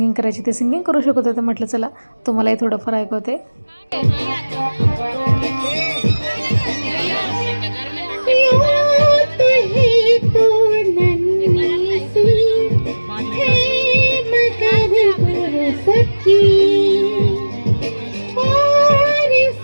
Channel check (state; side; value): inverted; both; correlation -1.00